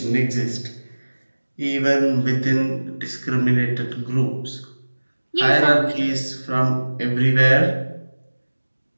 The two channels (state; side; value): inverted; both; correlation -1.00